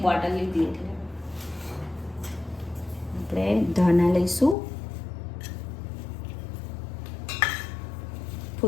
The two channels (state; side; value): drops out; right; at 4.5 s